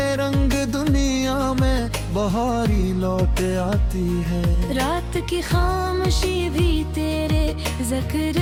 दुनिया में बहारी लौट आती है। रात की खामोशी भी तेरे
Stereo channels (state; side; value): identical; both; correlation 1.00